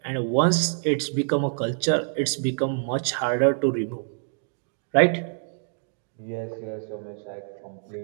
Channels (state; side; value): silent; left; digital silence